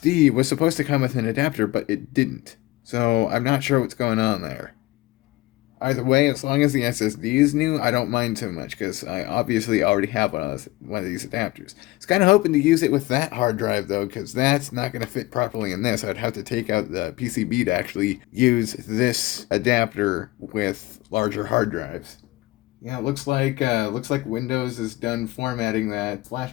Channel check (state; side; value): quieter; right; 19.1 dB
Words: was supposed to come with an adapter, but it didn't. So I'm not sure what's going on there. Either way, as long as the SSD is new, I don't mind too much because I obviously already have one of these adapters. I was kind of hoping to use it with that hard drive though, because that's not going to fit properly in this. I'd have to take out the PCB to actually use this adapter with larger hard drives. Yeah, it looks like Windows is done formatting that flash